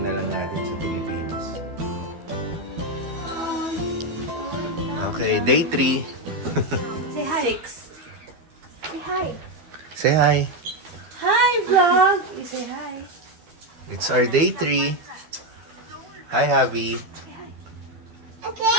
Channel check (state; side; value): late; left; 12 ms